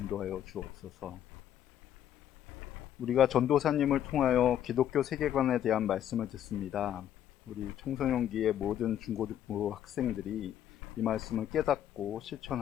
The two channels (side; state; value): right; quieter; 10.7 dB